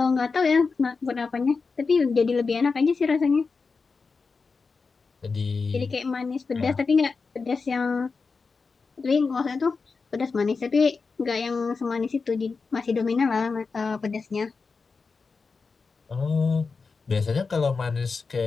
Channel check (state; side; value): quieter; right; 4.6 dB